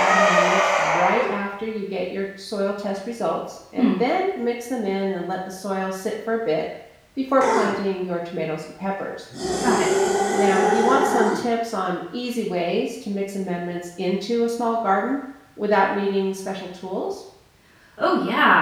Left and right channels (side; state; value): both; identical; correlation 1.00